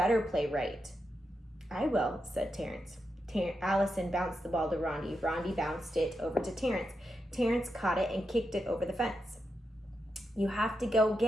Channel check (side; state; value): both; normal; correlation 0.86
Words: play right. I will, said Terrence. Allison bounced the ball to Rondi. Rondi bounced it over to Terrence. Terrence caught it and kicked it over the fence. You have to go